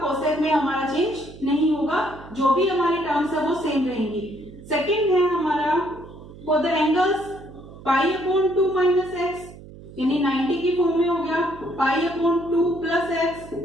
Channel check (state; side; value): noise; right; hum, 17 dB below the sound